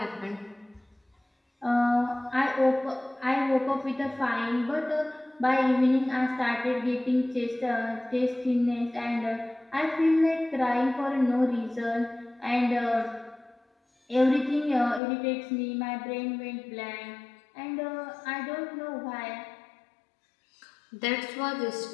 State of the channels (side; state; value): right; drops out; at 15.0 s